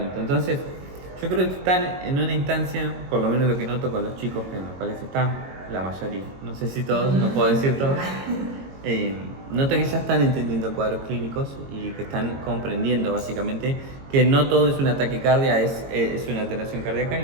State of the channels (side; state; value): left; late; 22 ms